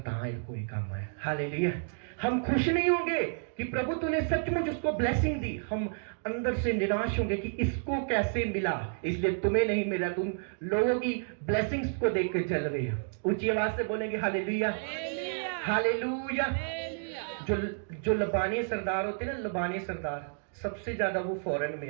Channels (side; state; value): left; silent; digital silence